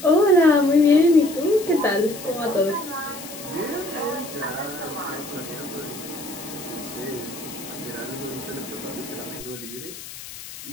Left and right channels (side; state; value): left; noise; hiss, 13 dB below the sound